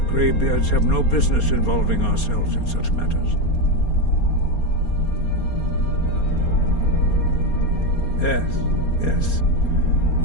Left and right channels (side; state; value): right; late; 4.3 ms